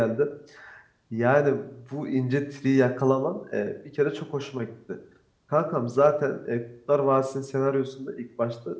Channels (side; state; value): both; identical; correlation 1.00